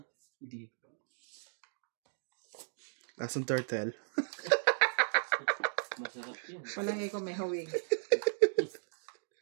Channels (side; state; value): left; silent; digital silence